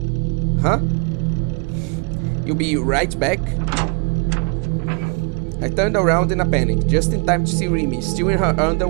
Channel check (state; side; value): quieter; left; 34.0 dB